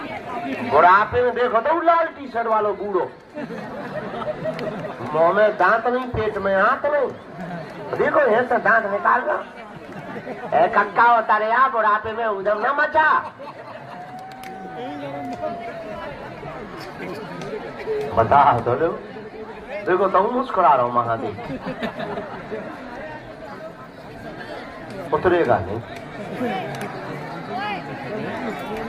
बुढ़ापे में देखो तो लाल टी-शर्ट वालों बूढ़ो, मुंह में दांत नहीं, पेट में हाथ नहीं, देखो ऐसे दांत निकाल रहा। कक्का होता रे आप बुढ़ापे में उधम न मचा। बता तो लो, देखो तो मुस्कुरा रहा हूं महादेव, उतरेगा नहीं।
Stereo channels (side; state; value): both; identical; correlation 1.00